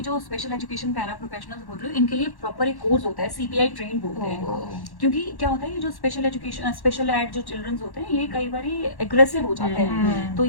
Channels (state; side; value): late; right; 1.1 ms